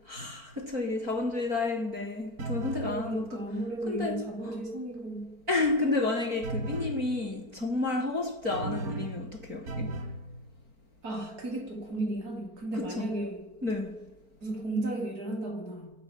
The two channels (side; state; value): left; late; 4.4 ms